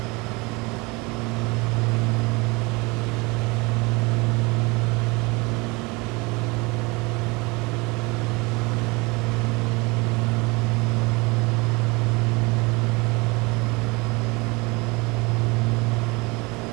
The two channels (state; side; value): quieter; left; 25.4 dB